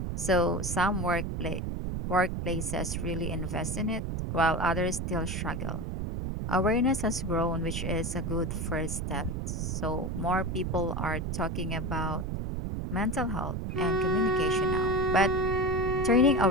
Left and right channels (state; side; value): noise; right; rumble, 2 dB below the sound